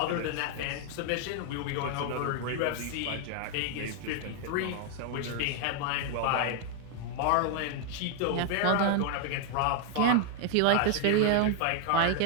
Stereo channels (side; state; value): both; different; correlation 0.00